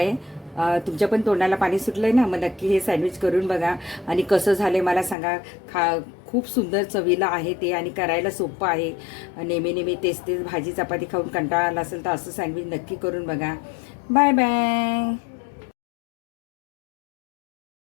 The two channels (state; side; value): drops out; right; at 5.2 s